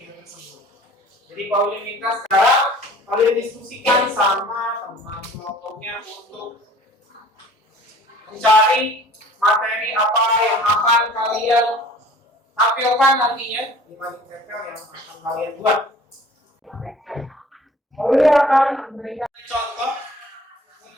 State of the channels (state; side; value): normal; both; correlation 0.49